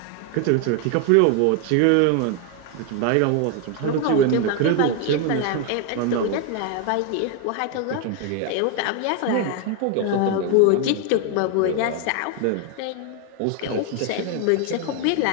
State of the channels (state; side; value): different; both; correlation 0.01